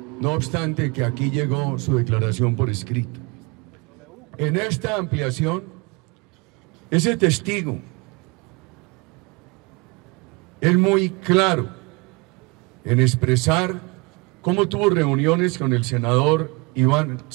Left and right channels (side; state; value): left; quieter; 27.9 dB